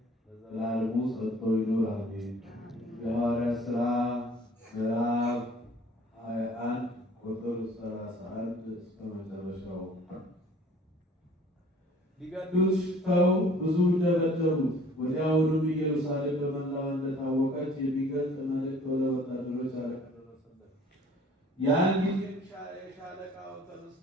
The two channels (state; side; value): normal; both; correlation 0.52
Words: ለዘላለሙ ጸንቶ ይኑር አሜን። የሐዋርያት ሥራ ምዕራፍ 21 ቁጥር 31 እስከ መጨረሻው። ሊገድሉት ሽተው ብዙ ደበደቡት። ወዲያውኑም ኢየሩሳሌም በመላዋ እንደታወቀች የሚገልጥ መልእክት ወደ ወታደሮች አለቃ ደረሰለት። ያን ጊዜ የሻለቃው ተነስቶ